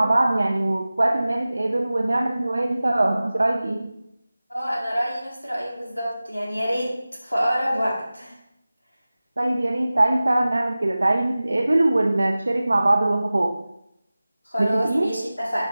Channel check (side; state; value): both; inverted; correlation -0.97